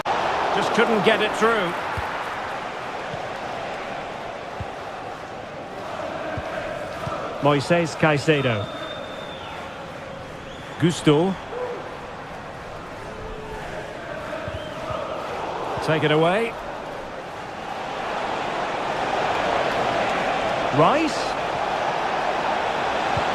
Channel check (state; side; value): identical; both; correlation 1.00